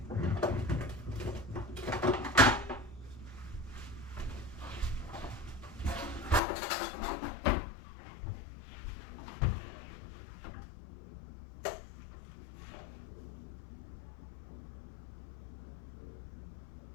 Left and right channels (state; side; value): drops out; right; at 6.4 s